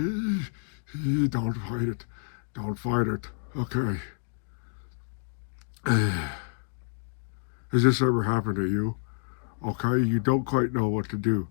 fight it. Don't fight it. Okay. Has this ever happened to you? Okay, you don't quite know what to do.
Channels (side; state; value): right; silent; digital silence